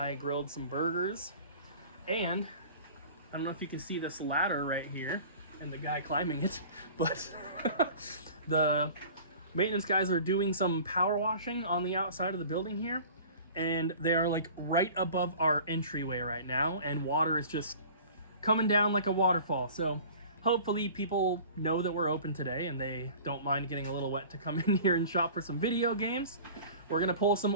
grilled some burgers. And I don't know if you can see this ladder right here and the guy climbing it, but the maintenance guys are doing some power washing on the outside of the building here, and they are like right above our entryway right now, and water is just coming down like a waterfall. So hopefully people know that we're open today and they don't mind getting a little wet to come in here and shop for some video games. We're gonna pull some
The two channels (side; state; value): both; inverted; correlation -0.43